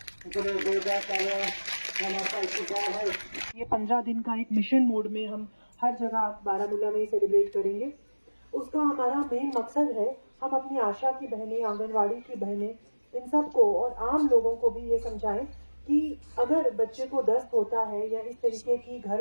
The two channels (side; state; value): both; inverted; correlation -1.00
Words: 15 दिन का एक मिशन मोड में हम हर जगह बारामूला में सेलिब्रेट करेंगे। उसका हमारा मेन मकसद है हम अपनी आशा की बहनें, आंगनवाड़ी की बहनें, इन सबको और आम लोगों को भी ये समझाएं कि अगर बच्चे को दस्त होता है या इस तरीके की